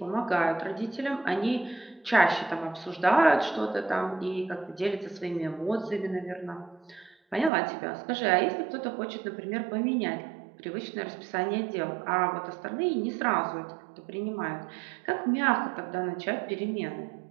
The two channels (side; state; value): left; drops out; at 7.5 s